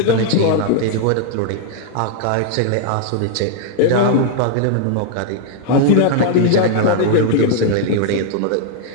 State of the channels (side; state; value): both; different; correlation -0.01